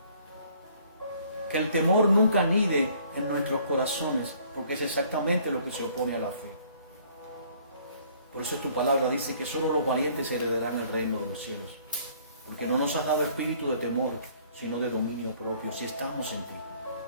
Que el temor nunca anide en nuestros corazones, porque es exactamente lo que se opone a la fe. Por eso tu palabra dice que solo los valientes heredarán el reino de los cielos, porque no nos has dado espíritu de temor, sino de dominio propio, si estamos en ti.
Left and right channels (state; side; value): inverted; both; correlation -0.59